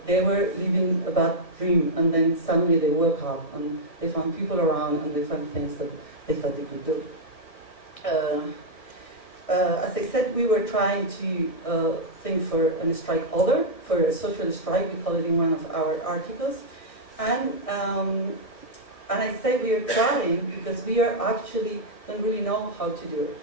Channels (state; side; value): late; right; 1.6 ms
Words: they were living a bad dream, and then suddenly they woke up and they found people around and they found things that they thought they could do. As I said, we were trying to think for a strike order, for a social strike, we call it in one of our articles. And I say we are trying because we are actually don't really know how to do it.